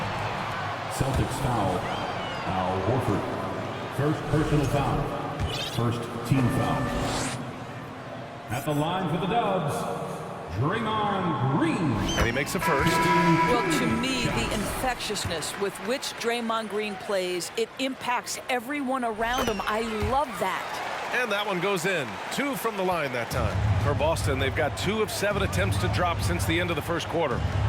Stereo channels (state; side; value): identical; both; correlation 1.00